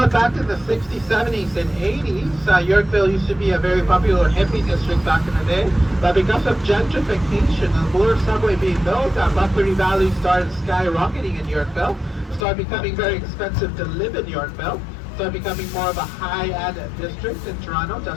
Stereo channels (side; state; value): right; drops out; at 12.5 s